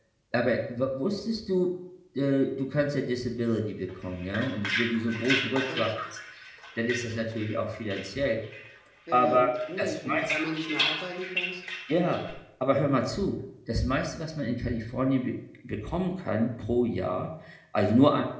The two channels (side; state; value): both; identical; correlation 1.00